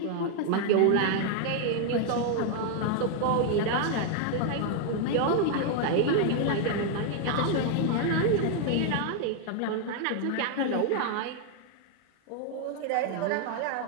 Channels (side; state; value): both; different; correlation 0.00